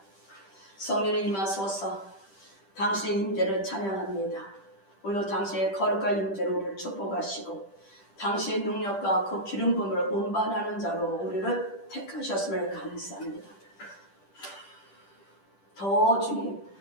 성령의 임하소서. 당신의 임재를 찬양합니다. 오늘도 당신의 거룩한 임재로 우리를 축복하시고 당신의 능력과 그 기름 부음을 운반하는 자로 우리를 택하셨음을 감사합니다. 더 주님,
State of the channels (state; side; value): late; right; 10 ms